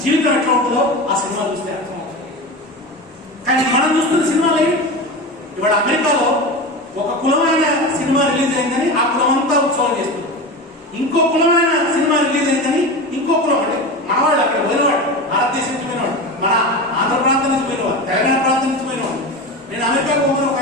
జీవితం ఎట్లా ఉంటుందో ఆ సినిమా చూస్తే అర్థమవుతుంది. కానీ మనం చూస్తున్న సినిమాలు ఇవాళ అమెరికాలో ఒక కులమైన సినిమా రిలీజ్ అయిందని ఆ కులం అంతా ఉత్సవం చేస్తుంది. ఇంకో కులమైన సినిమా రిలీజ్ అయిందని ఇంకో కులం, అంటే మనవాళ్ళు అక్కడ పోయినవాడు, భారతదేశం నుంచి పోయినవాడు, మన ఆంధ్ర ప్రాంతం నుంచి పోయినవాడు, తెలంగాణ ప్రాంతం నుంచి పోయినవాడు. నేను అమెరికాకు పోతున్న ఒక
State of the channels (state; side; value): normal; both; correlation 0.26